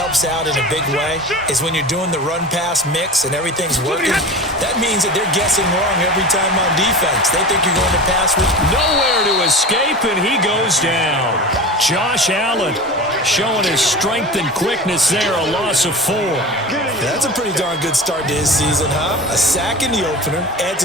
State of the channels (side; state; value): both; normal; correlation 0.32